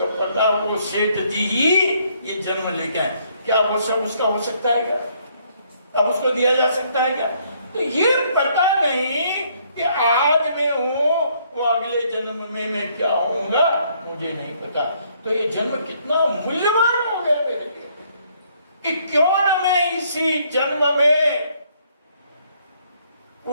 पता वो सेठ जी ही ये जन्म लेके आए। क्या वो सब उसका हो सकता है क्या? अब उसको दिया जा सकता है क्या? तो ये पता नहीं कि आज मैं हूं, वो अगले जन्म में मैं क्या होऊंगा मुझे नहीं पता। तो ये जन्म कितना मूल्यवान हो गया मेरे लिए कि क्यों न मैं इसी जन्म में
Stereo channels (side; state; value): both; inverted; correlation -0.67